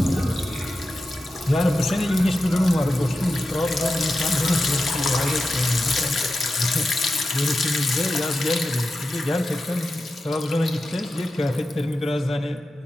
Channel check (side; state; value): both; normal; correlation 0.91